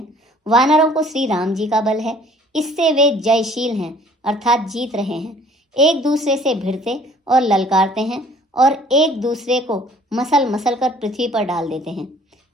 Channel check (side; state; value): both; normal; correlation 0.54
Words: वानरों को श्री राम जी का बल है, इससे वे जयशील हैं अर्थात जीत रहे हैं। एक दूसरे से भिड़ते और ललकारते हैं और एक दूसरे को मसल मसल कर पृथ्वी पर डाल देते हैं।